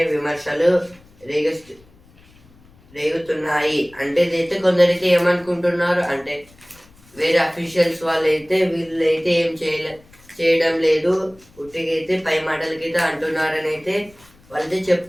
విమర్శలు రేగుతున్నాయి. అంటే ఇదైతే కొందరైతే ఏమనుకుంటున్నారు అంటే వేరే అఫీషియల్స్ వాళ్ళైతే వీళ్ళైతే ఏం చేయడం లేదు, ఉట్టికైతే పై మాటలకైతే అంటున్నారని అయితే వాళ్ళైతే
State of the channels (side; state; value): left; noise; rumble, 28 dB below the sound